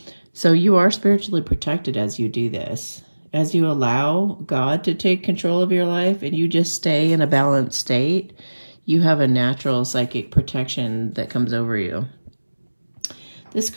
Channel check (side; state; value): both; inverted; correlation -1.00